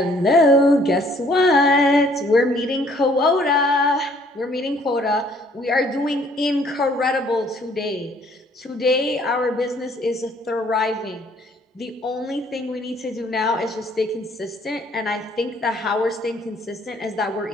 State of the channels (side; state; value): both; normal; correlation 0.61